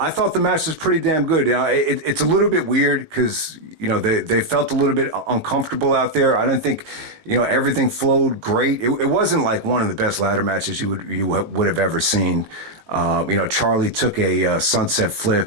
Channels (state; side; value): late; left; 19 ms